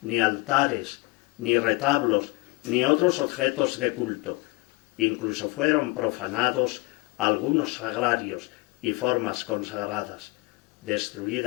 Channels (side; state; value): right; quieter; 24.4 dB